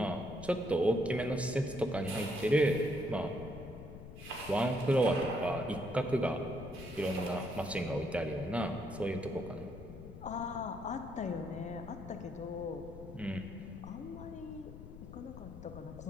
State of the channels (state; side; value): noise; left; rumble, 13 dB below the sound